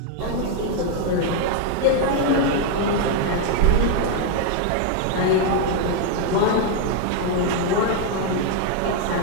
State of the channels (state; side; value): different; both; correlation 0.00